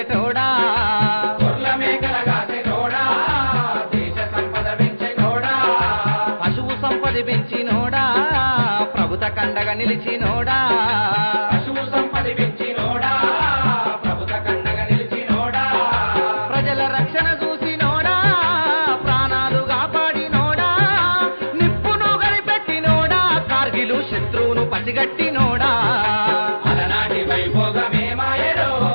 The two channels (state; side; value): inverted; both; correlation -1.00